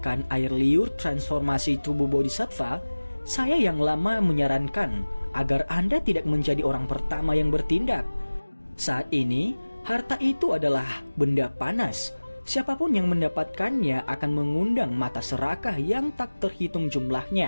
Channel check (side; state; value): both; inverted; correlation -1.00